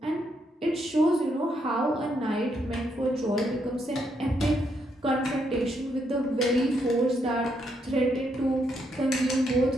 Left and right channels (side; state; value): both; normal; correlation 0.77